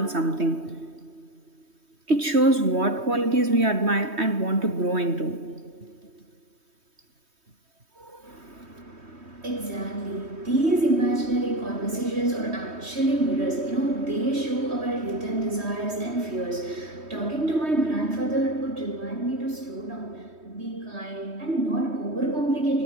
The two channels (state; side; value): late; left; 3.2 ms